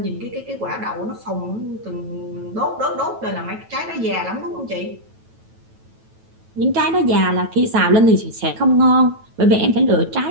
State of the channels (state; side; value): late; left; 9.2 ms